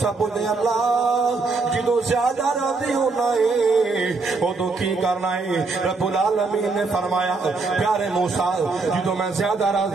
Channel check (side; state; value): left; quieter; 3.9 dB